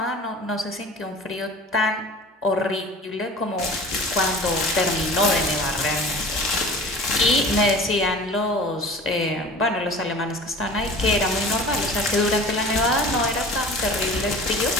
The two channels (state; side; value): normal; both; correlation 0.40